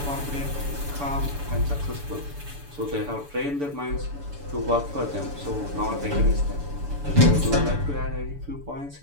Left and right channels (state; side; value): late; left; 7.0 ms